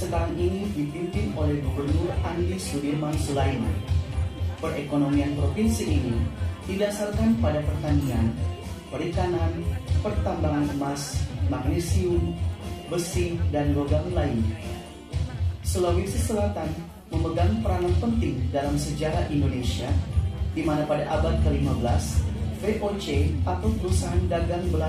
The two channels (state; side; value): identical; both; correlation 1.00